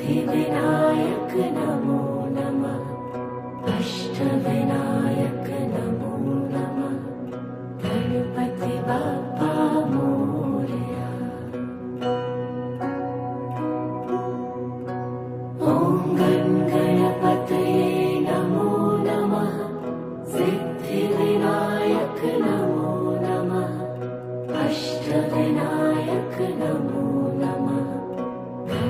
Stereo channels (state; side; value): identical; both; correlation 1.00